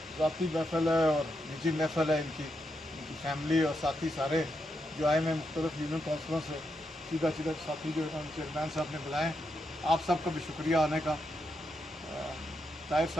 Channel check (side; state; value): both; normal; correlation 0.83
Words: ज़ाती महफिल है और निजी महफिल है, इनकी फैमिली और साथी सारे जो आए हैं मुख्तलिफ यूनियन काउंसिलों से, सीधा सीधा साथी जो है चेयरमैन साहब ने बुलाए, आप सबका भी शुक्रिया आने का। ताहिर